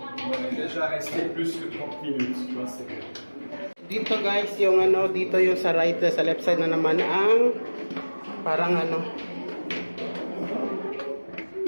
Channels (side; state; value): both; inverted; correlation -1.00